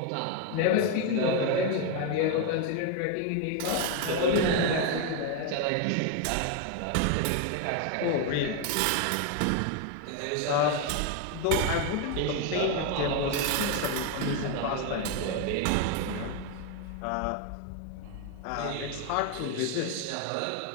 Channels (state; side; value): different; both; correlation 0.01